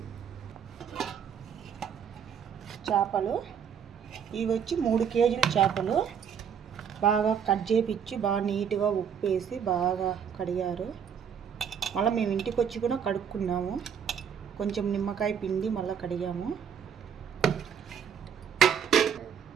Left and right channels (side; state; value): left; quieter; 7.7 dB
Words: చేపలు ఇవి వచ్చి 3 కేజీల చేపలు బాగా కట్ చేపించి బాగా నీట్గా ఉప్పు వేసి బాగా కడిగారు. మళ్ళీ మేము ఇంటికి వచ్చి కూడా కడుక్కున్నాము. కొంచెం నిమ్మకాయ పిండి మళ్ళీ కడిగాము.